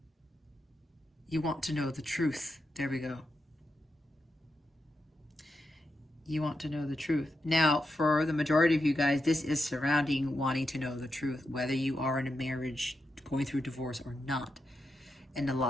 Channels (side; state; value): both; normal; correlation 0.86